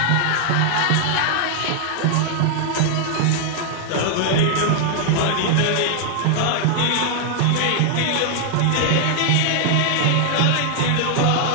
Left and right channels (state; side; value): different; both; correlation 0.00